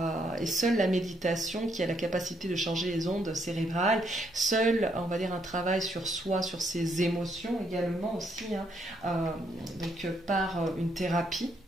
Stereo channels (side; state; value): both; normal; correlation 0.74